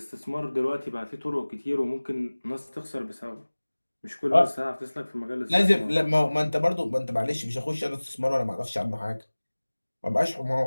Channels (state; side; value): inverted; both; correlation -1.00